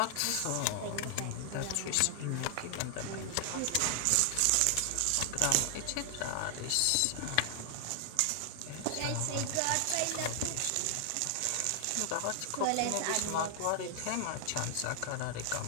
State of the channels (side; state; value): both; different; correlation 0.00